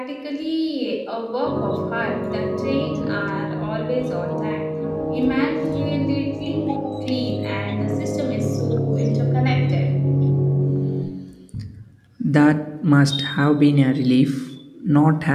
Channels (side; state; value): both; identical; correlation 1.00